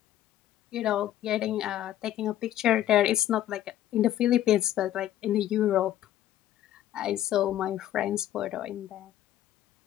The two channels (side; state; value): right; quieter; 12.6 dB